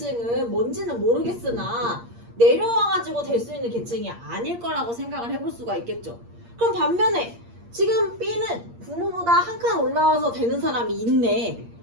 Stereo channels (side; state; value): left; late; 8.6 ms